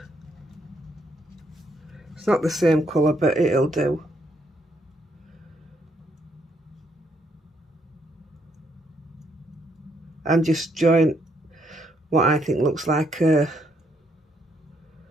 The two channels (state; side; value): normal; both; correlation 0.73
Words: It's not the same colour, but it'll do. And just join what I think looks like a